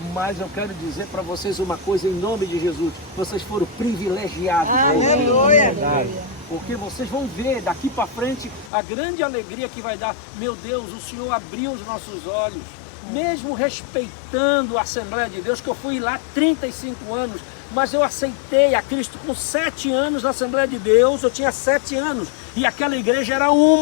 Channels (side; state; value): right; drops out; at 8.7 s